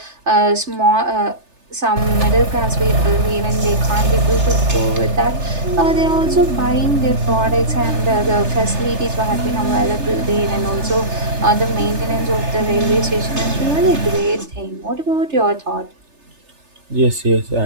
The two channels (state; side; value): late; left; 3.3 ms